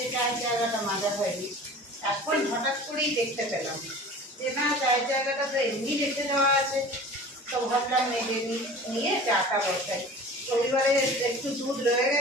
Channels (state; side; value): normal; both; correlation 0.40